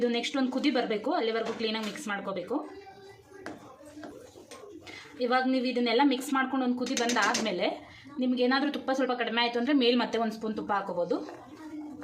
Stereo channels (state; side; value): identical; both; correlation 1.00